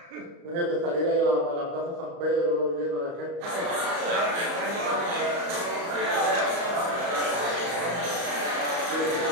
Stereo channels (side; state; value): left; late; 34 ms